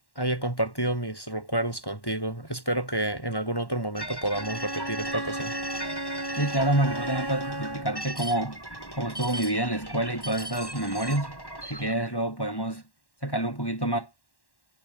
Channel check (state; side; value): late; right; 1.1 ms